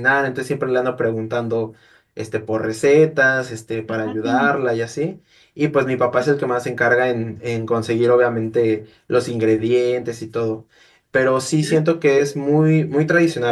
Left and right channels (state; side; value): identical; both; correlation 1.00